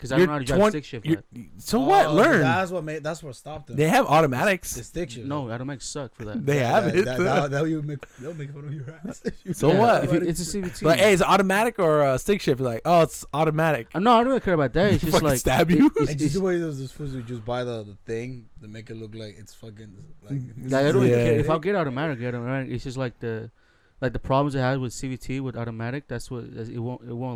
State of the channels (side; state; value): both; identical; correlation 1.00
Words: I You're don't know how to drive 20 stick shift. you're- Yet. So what? Learn. That's what stopped them. They have The automatics. stick shift. No, automatic suck for that. They have it. They'll make fun of your ass. So what? If it's a CVT. Like, hey, is it automatic or stick shift? Like, oh, it's automatic. No, I don't really care about that. It's just Fucking like stab you? And just the way those fools who just buy the thing to make it look like it's fucking Like, I don't Yeah. really care. If I'll get automatic, get automatic. It's just like the problems it has with CVT with automatic. That's what it